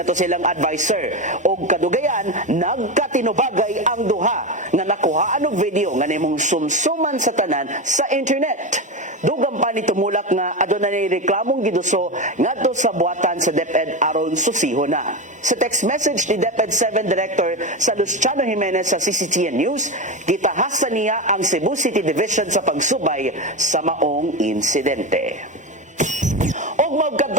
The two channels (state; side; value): normal; both; correlation 0.18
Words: to silang advisor og kadugayan nagkatinubagay ang duha nga nakuhaan og video nga nimong sumsuman sa tanan sa internet. Dugang pa ni tumulak nga adunay reklamong giduso ngadto sa buhatan sa DepEd aron susihon na. Sa text message ni DepEd 7 Director sa Luciano Jimenez sa CCTN News, gitahasan niya ang Cebu City Division sa pagsubay sa maong insidente. Og